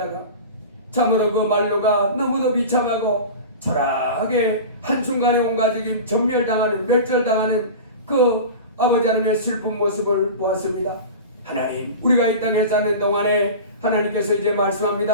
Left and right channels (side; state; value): both; inverted; correlation -0.32